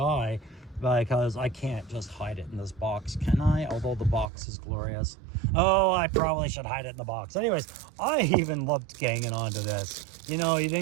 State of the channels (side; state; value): left; drops out; at 4.3 s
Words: because I can't just hide it in this box, can I? Although the box is glorious. Oh, I probably should hide it in the box. Anyways, I even loved ganging onto this. You know, you